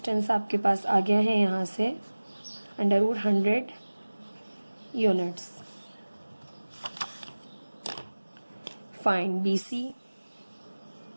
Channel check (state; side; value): inverted; both; correlation -1.00